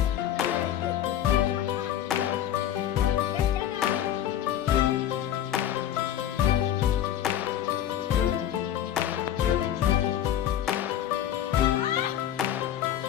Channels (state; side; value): quieter; right; 11.1 dB